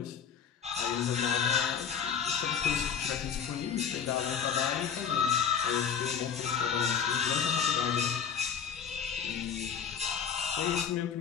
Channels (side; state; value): right; quieter; 7.5 dB